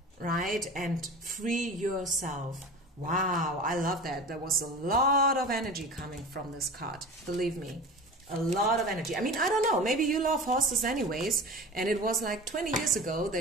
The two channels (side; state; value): both; normal; correlation 0.35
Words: right? And free yourself. Wow, I love that. There was a lot of energy coming from this card. Believe me. A lot of energy. I mean, I don't know. Maybe you love horses anyways. And it was like 20 years ago